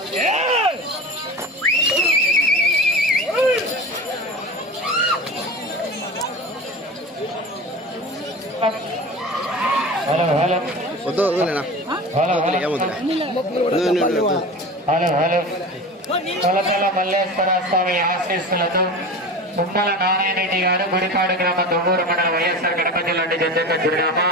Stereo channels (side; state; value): both; normal; correlation 0.32